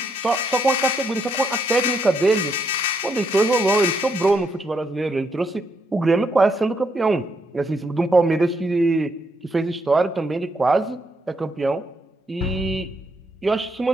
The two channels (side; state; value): both; normal; correlation 0.77